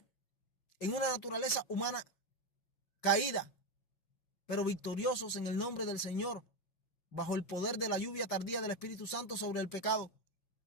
en una naturaleza humana caída, pero victoriosos en el nombre del Señor, bajo el poder de la lluvia tardía del Espíritu Santo sobre el pecado.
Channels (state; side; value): late; right; 5.8 ms